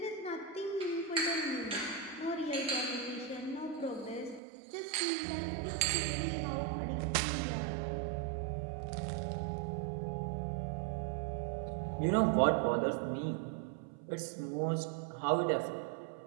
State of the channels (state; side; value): drops out; left; at 4.4 s